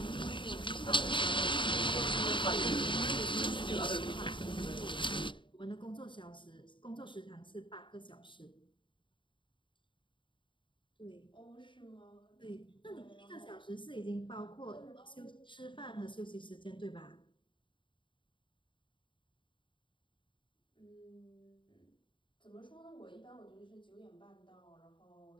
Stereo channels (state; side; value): late; right; 0.24 ms